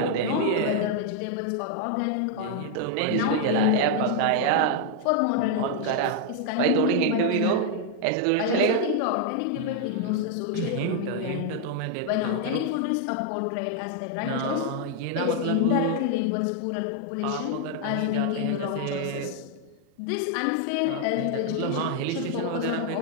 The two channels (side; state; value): both; different; correlation 0.00